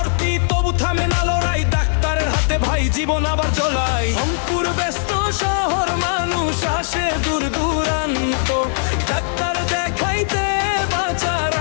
তবু থামে না লড়াই, ডাক্তারের হাতে ভাই জীবন আবার চলাই। রংপুর ব্যস্ত শহর, মানুষ আসে দূর দূরান্ত, ডাক্তার দেখাইতে বাঁচার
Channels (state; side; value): silent; right; digital silence